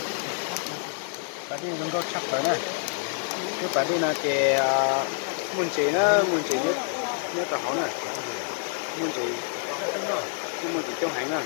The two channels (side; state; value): right; silent; 60 dB below the other